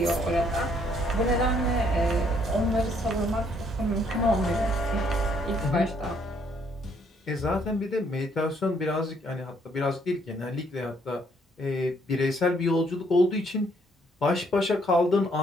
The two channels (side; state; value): both; normal; correlation 0.67